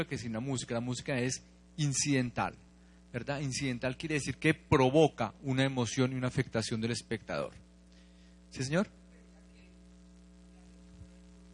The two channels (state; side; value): identical; both; correlation 1.00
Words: que sin la música. La música es incidental, ¿verdad? Incidental quiere decir que provoca una emoción y una afectación del espectador. ¿Sí, señor?